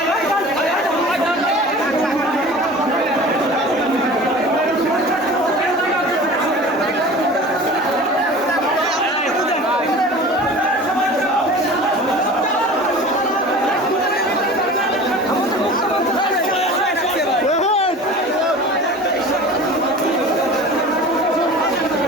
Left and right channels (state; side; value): normal; both; correlation 0.39